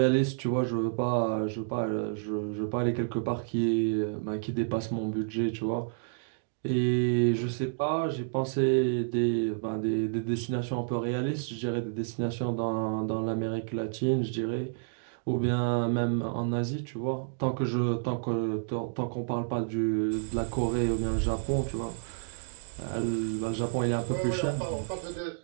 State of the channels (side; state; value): left; silent; digital silence